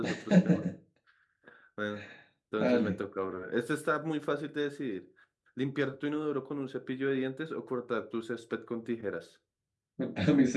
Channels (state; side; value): identical; both; correlation 1.00